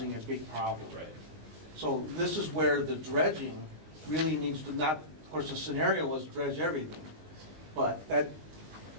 a big problem. Right. So this is where the dredging really needs to not, of course, the scenario was dredge everything. But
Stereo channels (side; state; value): left; late; 19 ms